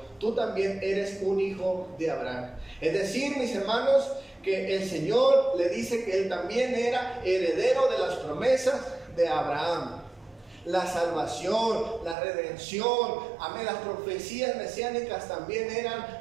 tú también eres un hijo de Abraham. Es decir, mis hermanos, que el Señor le dice que él también era heredero de las promesas de Abraham. La salvación, la redención, amén, las profecías mesiánicas también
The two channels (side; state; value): left; drops out; at 12.2 s